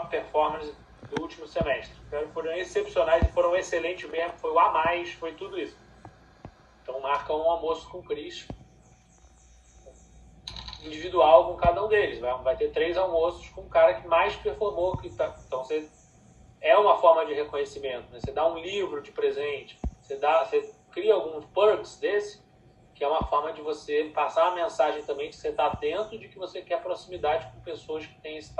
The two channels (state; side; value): identical; both; correlation 1.00